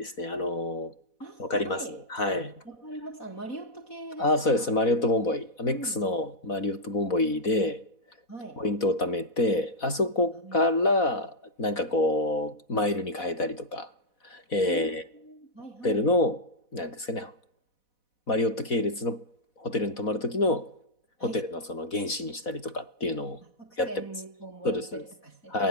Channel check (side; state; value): right; late; 4.1 ms